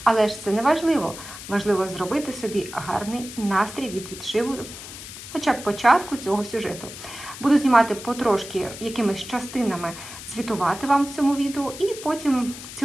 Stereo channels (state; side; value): noise; left; hiss, 12 dB below the sound